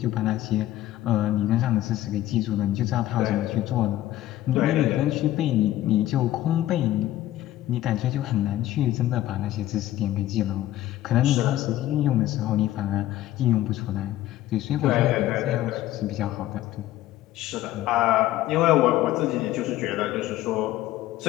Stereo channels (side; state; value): right; quieter; 14.4 dB